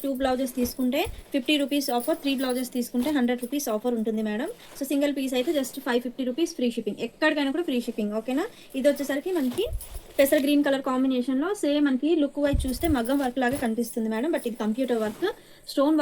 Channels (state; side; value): identical; both; correlation 1.00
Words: 2 బ్లౌజెస్ తీసుకుంటే 50 రూపీస్ ఆఫర్, 3 బ్లౌజెస్ తీసుకుంటే 100 రూపీస్ ఆఫర్ ఉంటుంది మేడం. సో, సింగిల్ పీస్ అయితే జస్ట్ 550 రూపీస్ ఫ్రీ షిప్పింగ్. ఎక్కడికైనా కూడా ఫ్రీ షిప్పింగ్ ఓకేనా. ఇదొచ్చేసరికి మనకి పెసర్ గ్రీన్ కలర్ కాంబినేషన్‌లో సేమ్ మనకి లుక్ వైజ్ చూస్తే మగ్గం వర్క్ లాగా కనిపిస్తుంది మేడం. బట్ ఇది కంప్యూటర్ వర్క్. స్టోన్